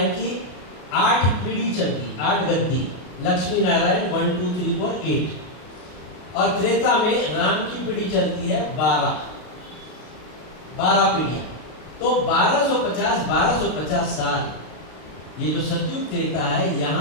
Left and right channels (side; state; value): right; late; 33 ms